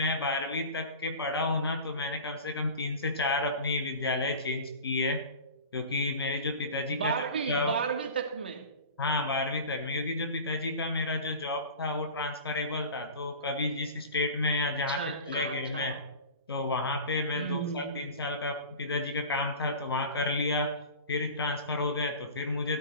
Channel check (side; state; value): both; inverted; correlation -0.36